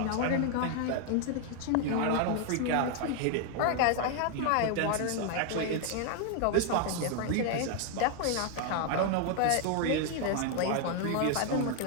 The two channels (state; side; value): different; both; correlation 0.00